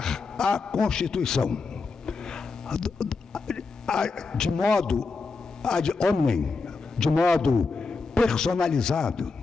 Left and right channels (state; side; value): quieter; right; 4.3 dB